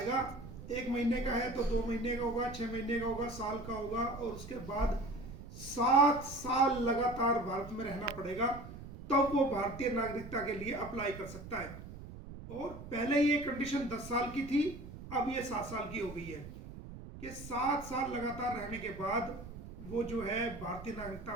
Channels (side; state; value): right; noise; rumble, 13 dB below the sound